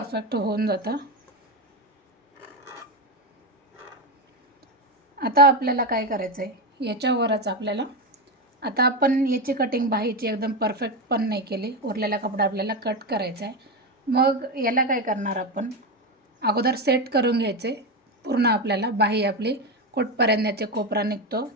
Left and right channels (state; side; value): normal; both; correlation 0.13